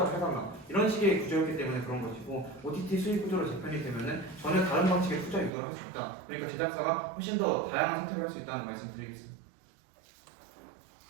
해달라. 이런 식의 구조였기 때문에 그런 것이고 OTT 수익 구조로 재편이 되면은 전혀 다른 방식의 투자 유도를 할 수 있다. 그러니까 제작사가 훨씬 더 다양한 선택을 할 수 있다는 말씀드리겠습니다.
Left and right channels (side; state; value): left; drops out; at 5.5 s